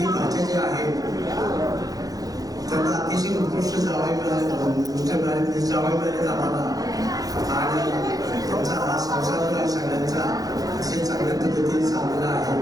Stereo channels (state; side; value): late; left; 0.18 ms